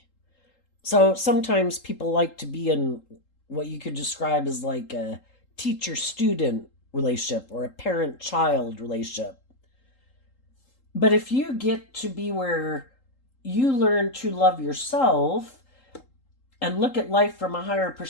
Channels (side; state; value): right; late; 3.8 ms